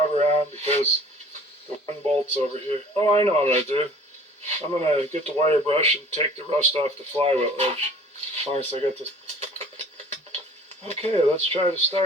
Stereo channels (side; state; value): both; normal; correlation 0.49